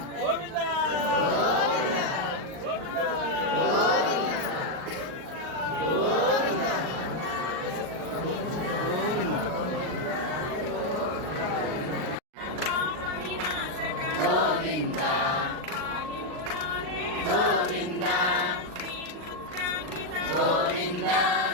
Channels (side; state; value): left; late; 38 ms